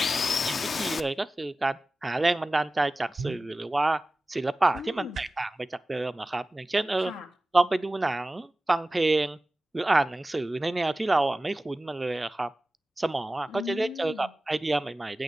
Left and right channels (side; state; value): both; normal; correlation 0.96